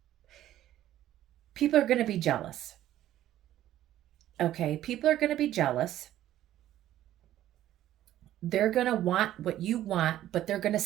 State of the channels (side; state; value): left; quieter; 13.0 dB